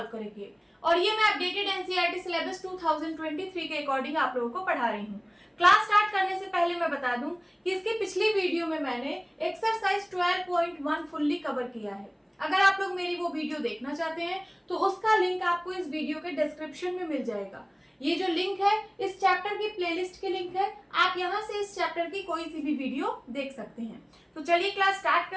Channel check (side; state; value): both; identical; correlation 1.00